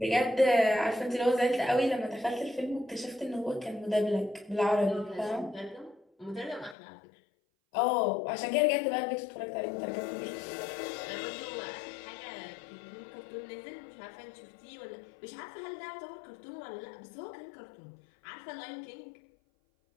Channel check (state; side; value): drops out; right; at 6.8 s